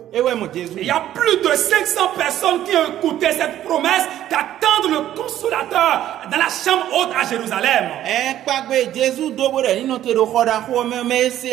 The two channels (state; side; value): quieter; left; 12.3 dB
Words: y a plus de 500 personnes qui ont écouté cette promesse d'attendre le Consolateur dans la chambre haute à Jérusalem.